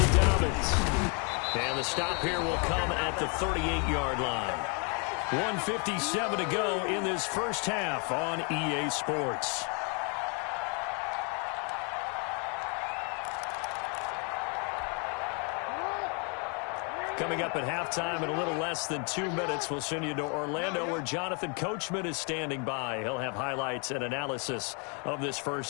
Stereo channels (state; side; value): quieter; right; 36.5 dB